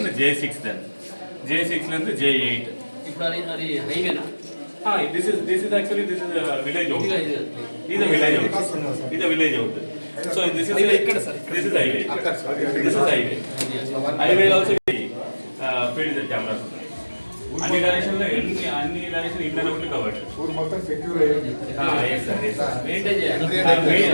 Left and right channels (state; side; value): inverted; both; correlation -1.00